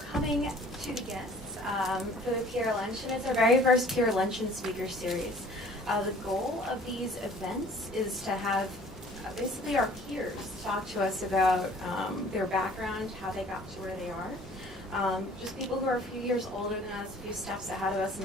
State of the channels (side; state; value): both; normal; correlation 0.51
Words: to the guests for the Peer Luncheon. It's our very first Peer Luncheon speaker series. The goal of these events is to have basically our peers talk to us about their background, how they got to where they are. Just people who are a few years older than us, a few steps ahead of us in